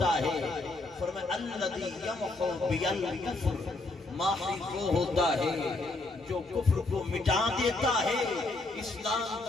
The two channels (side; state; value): right; quieter; 3.0 dB